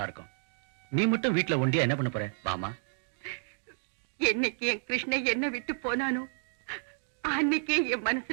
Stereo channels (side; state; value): left; silent; 57 dB below the other